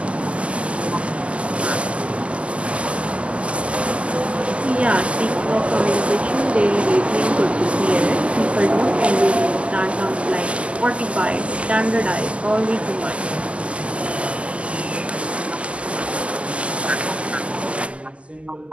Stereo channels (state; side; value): late; left; 0.058 ms